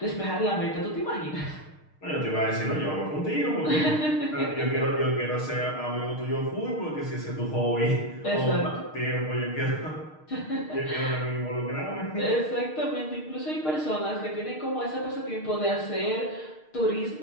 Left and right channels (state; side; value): late; right; 6.5 ms